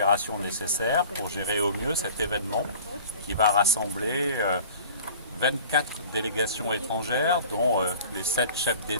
nécessaire pour gérer au mieux cet événement qui va rassembler 24 délégations étrangères, dont les 7 chefs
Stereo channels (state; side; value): inverted; both; correlation -0.44